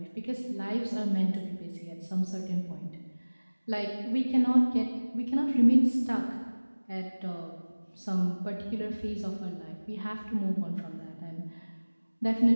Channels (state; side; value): inverted; both; correlation -1.00